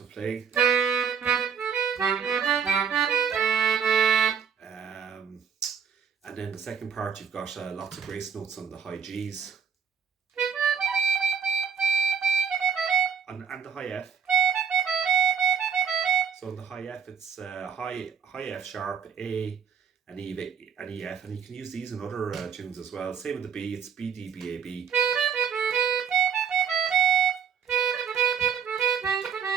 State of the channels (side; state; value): left; quieter; 7.0 dB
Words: playing. And then the second part, you've got lots of grace notes on the high Gs. And the high F. So in the high F, it's high F sharp, A, and E, and EF, and you can use these in other tunes as well. Same with the B, it's B, D, B, A, B.